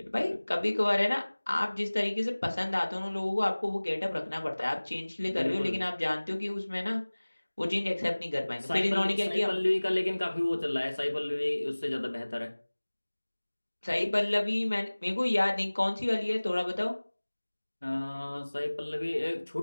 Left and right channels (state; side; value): inverted; both; correlation -1.00